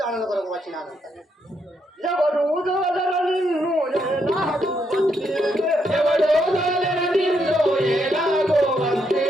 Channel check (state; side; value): normal; both; correlation 0.77